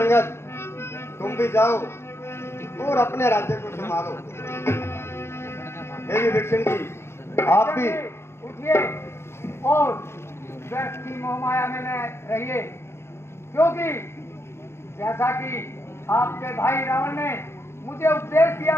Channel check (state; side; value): late; right; 0.12 ms